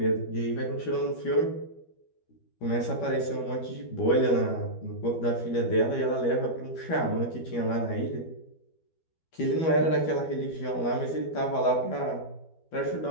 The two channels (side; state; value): right; late; 12 ms